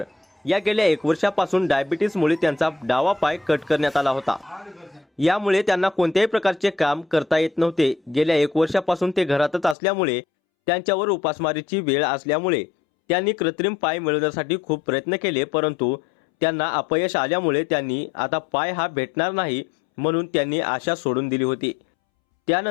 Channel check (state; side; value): drops out; right; at 9.8 s